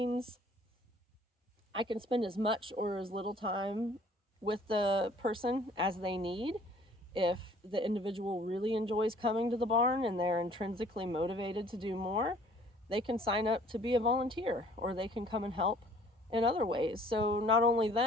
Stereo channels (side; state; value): both; normal; correlation 0.55